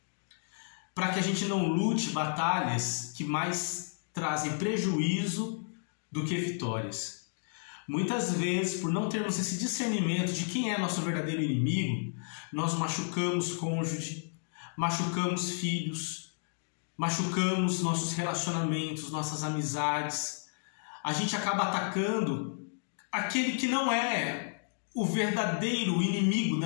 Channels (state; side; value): silent; right; digital silence